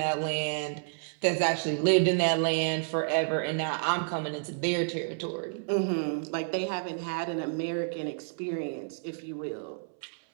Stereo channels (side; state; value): left; silent; 58 dB below the other